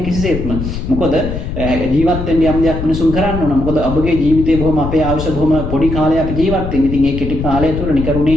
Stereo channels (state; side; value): noise; left; rumble, 5 dB below the sound